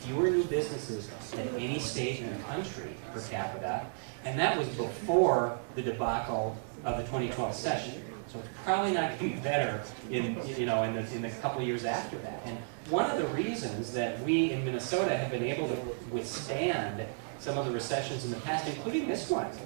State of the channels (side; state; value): left; silent; digital silence